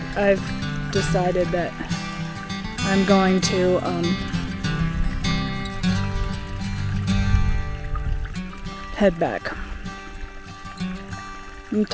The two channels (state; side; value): identical; both; correlation 1.00